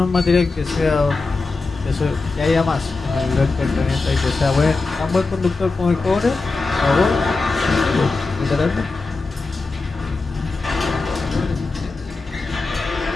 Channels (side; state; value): right; quieter; 3.8 dB